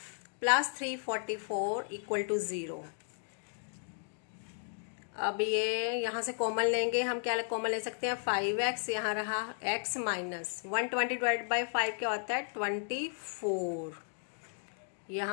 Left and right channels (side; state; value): right; silent; digital silence